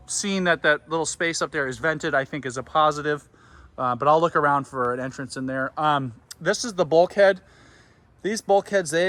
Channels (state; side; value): identical; both; correlation 1.00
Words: seeing that little space up there is vented, I think is a positive. But I'll look around for an entrance in there. This is the bulkhead. These bulkheads,